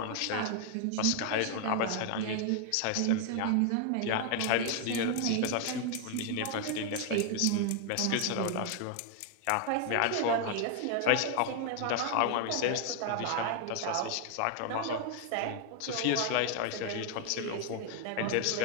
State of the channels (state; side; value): different; both; correlation 0.00